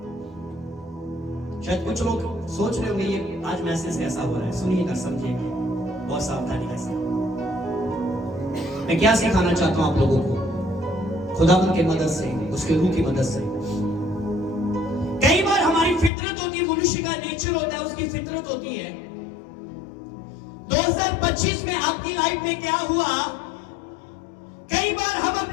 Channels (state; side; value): drops out; right; at 16.1 s